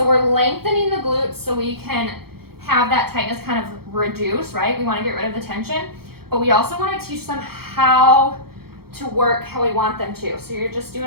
we're lengthening the glutes so we can have that tightness kind of reduce, right? We wanna get rid of the tension, but we also wanna teach them how to work how we want them to. So you're just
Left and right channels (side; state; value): left; late; 0.95 ms